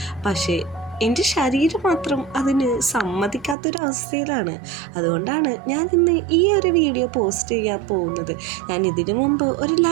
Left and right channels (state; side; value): drops out; left; at 3.6 s